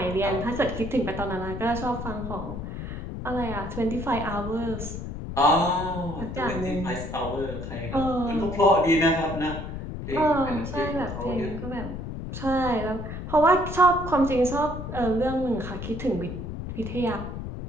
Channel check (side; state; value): left; noise; rumble, 7 dB below the sound